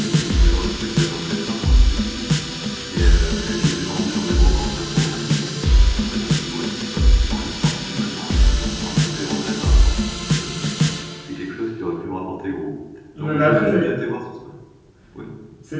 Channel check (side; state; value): both; identical; correlation 1.00